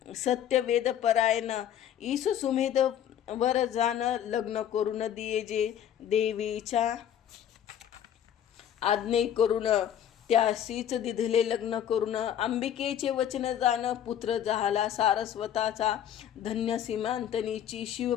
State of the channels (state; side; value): quieter; right; 10.0 dB